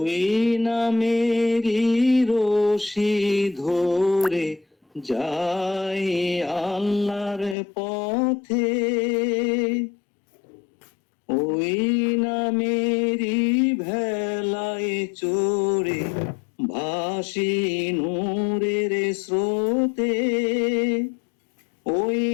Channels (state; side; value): drops out; right; at 7.6 s